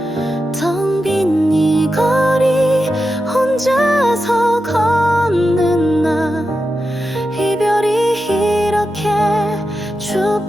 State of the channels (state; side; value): normal; both; correlation 0.89